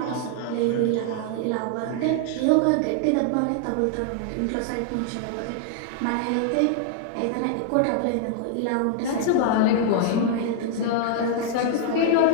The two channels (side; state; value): both; different; correlation -0.01